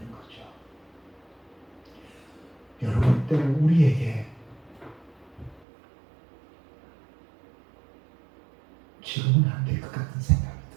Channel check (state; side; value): drops out; left; at 5.7 s